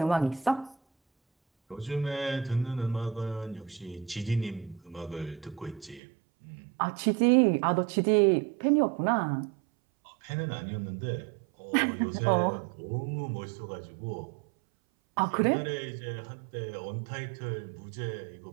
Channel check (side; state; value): left; drops out; at 6.0 s